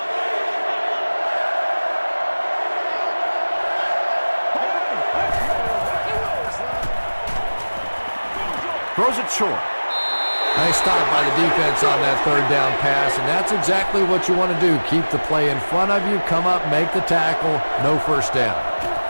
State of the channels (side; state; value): both; inverted; correlation -1.00